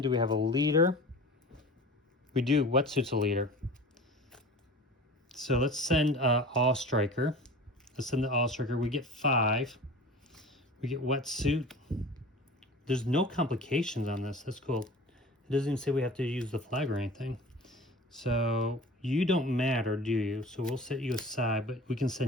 Do we have a leader? We do. Wetsuit's a leader. So let's send All Striker. Let's send the All Striker. We get 5. We get Wetsuit. There's no complications on this. That's cool. It doesn't even say we have to use the flag or anything. So you don't matter, do you? So we'll set you aside, but we can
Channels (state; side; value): normal; both; correlation 0.39